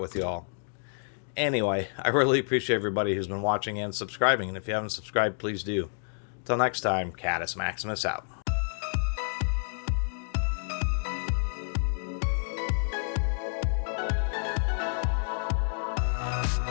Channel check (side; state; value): right; silent; digital silence